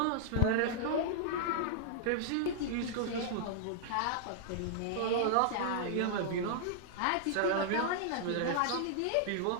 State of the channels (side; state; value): both; different; correlation -0.01